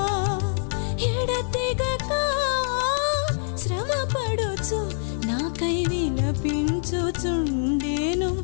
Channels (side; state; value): right; silent; digital silence